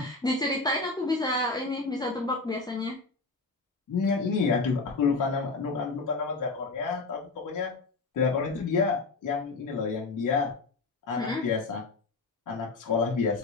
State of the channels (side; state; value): right; quieter; 3.8 dB